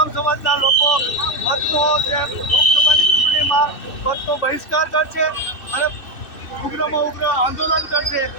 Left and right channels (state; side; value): late; right; 2.6 ms